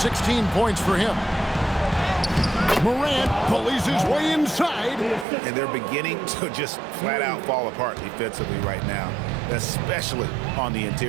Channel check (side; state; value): left; drops out; at 5.2 s